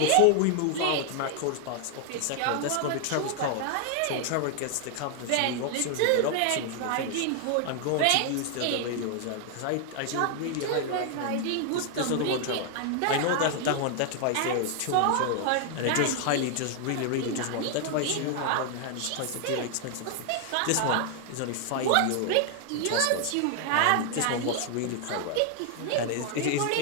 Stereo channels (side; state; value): both; different; correlation 0.00